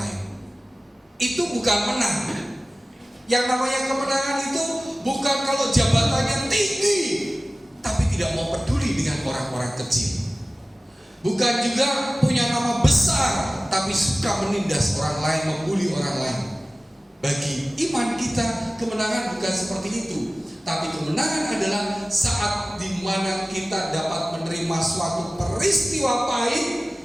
Itu bukan menang. Yang namanya kemenangan itu bukan kalau jabatannya tinggi tapi tidak mau peduli dengan orang-orang kecil. Bukan juga punya nama besar tapi suka menindas orang lain, membuli orang lain. Bagi iman kita, kemenangan bukan seperti itu. Tapi kemenangan adalah saat dimana kita dapat menerima suatu peristiwa pahit,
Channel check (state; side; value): normal; both; correlation 0.97